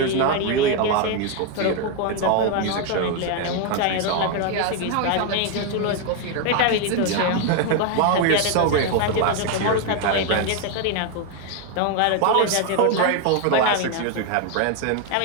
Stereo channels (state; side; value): different; both; correlation 0.01